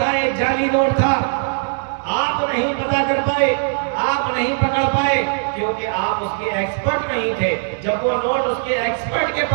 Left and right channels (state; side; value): silent; left; digital silence